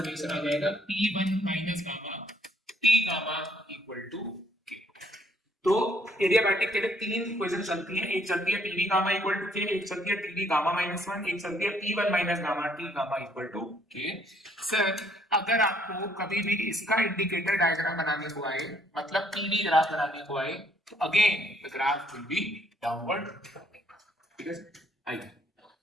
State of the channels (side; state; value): both; normal; correlation 0.66